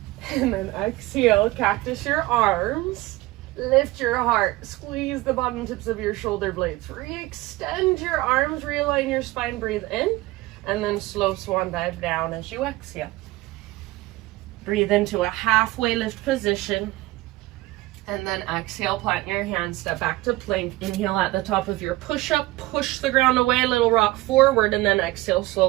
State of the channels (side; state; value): left; quieter; 19.3 dB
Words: And then exhale, cactus your arms. Lift your heart. Squeeze the bottom tips of your shoulder blades. Re-extend your arms, realign your spine, breathe in. And then slow swan dive down as you exhale. Breathe into a halfway lift position. And then exhale, plant your hands, step back to plank. Inhale at the top of your push-up, push the ground away, little rock forward, and then exhale,